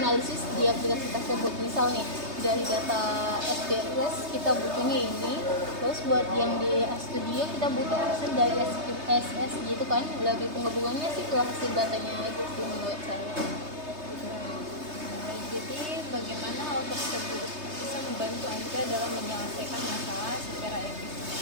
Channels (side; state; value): left; late; 3.3 ms